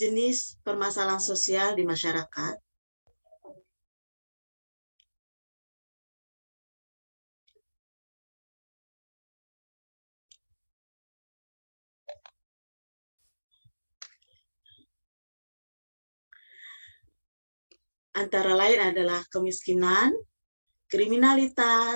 permasalahan sosial di masyarakat? Antara lain adalah kemiskinan,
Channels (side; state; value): both; inverted; correlation -1.00